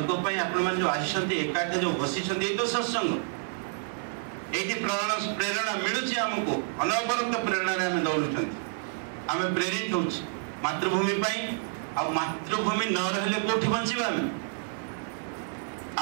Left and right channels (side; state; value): left; silent; digital silence